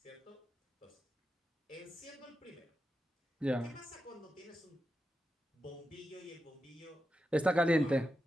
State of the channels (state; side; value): normal; both; correlation 0.89